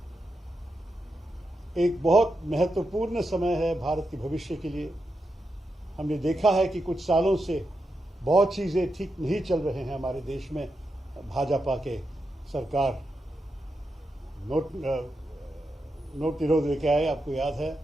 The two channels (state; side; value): normal; both; correlation 0.86